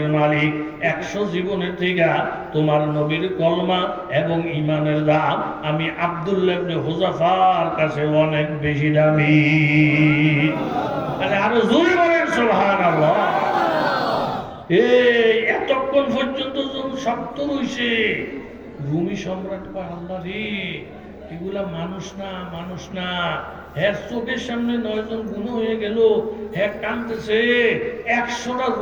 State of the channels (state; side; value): identical; both; correlation 1.00